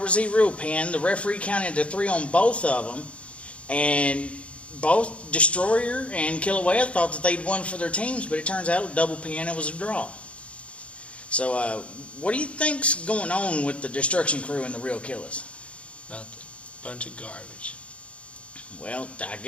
Z. Real pinned. The referee counted to 3 on both of them. And both Destroyer and Kilauea thought that they'd won for their teams, but it turns out a double pin, it was a draw. So, what do you think's going on with the Destruction Crew and the Real Killers? Nothing. Bunch of garbage. Well, I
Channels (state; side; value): late; right; 0.061 ms